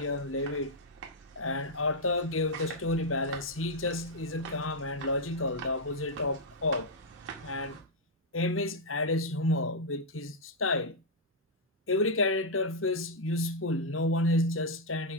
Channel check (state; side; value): normal; both; correlation -0.04